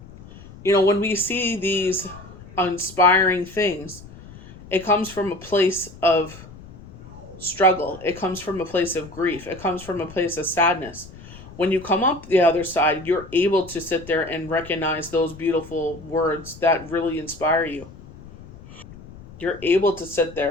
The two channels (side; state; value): left; noise; rumble, 18 dB below the sound